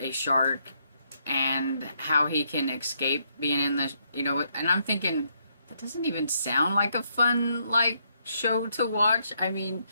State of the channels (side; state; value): both; inverted; correlation -0.75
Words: shark and how he can escape being in the, and I'm thinking, that doesn't even sound like a fun, show to watch. I mean,